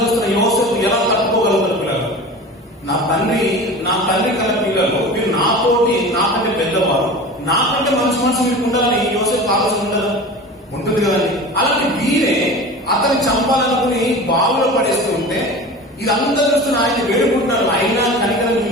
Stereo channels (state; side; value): normal; both; correlation 0.35